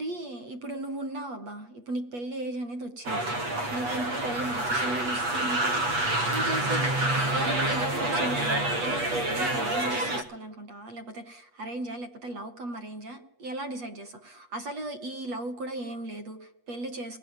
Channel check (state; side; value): late; left; 8.3 ms